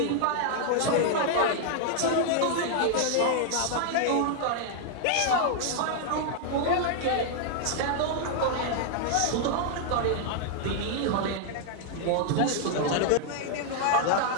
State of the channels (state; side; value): different; both; correlation 0.00